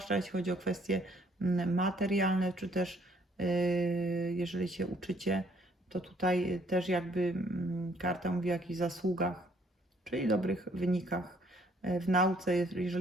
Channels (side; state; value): both; normal; correlation 0.64